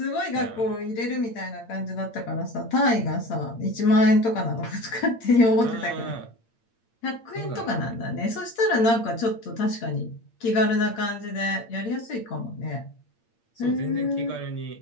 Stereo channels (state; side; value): late; right; 8.8 ms